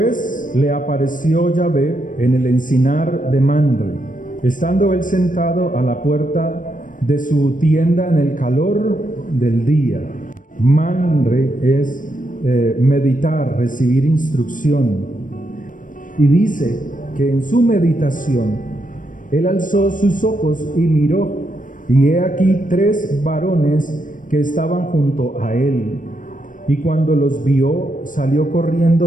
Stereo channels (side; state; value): right; late; 0.38 ms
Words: le apareció Yahvé en el encinar de Mamre, estando él sentado a la puerta de su tienda en el calor del día. Mamre es meditar, recibir instrucción. Y dice que en su meditación él alzó sus ojos y miró, y he aquí 3 varones que estaban junto a él. Y cuando los vio, salió